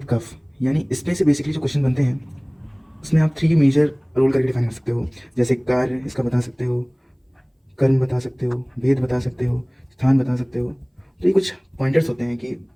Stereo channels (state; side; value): identical; both; correlation 1.00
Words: कफ, यानी इसमें से बेसिकली जो क्वेश्चन बनते हैं उसमें आप 3 मेजर रोल करके डिफाइन कर सकते हो। जैसे कार्य इसका बता सकते हो, कर्म बता सकते हो, भेद बता सकते हो, स्थान बता सकते हो। तो ये कुछ पॉइंटर्स होते हैं कि